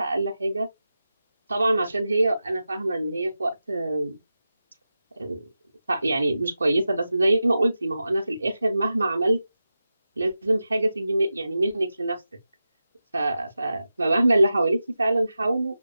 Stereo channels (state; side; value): inverted; both; correlation -0.92